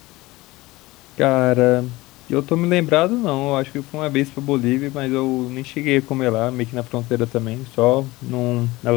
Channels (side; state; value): right; quieter; 20.2 dB